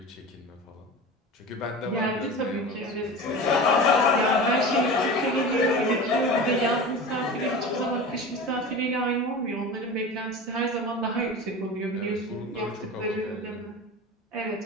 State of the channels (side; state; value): both; normal; correlation 0.32